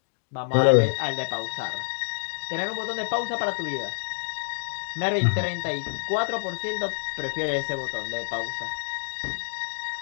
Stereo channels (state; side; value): silent; right; digital silence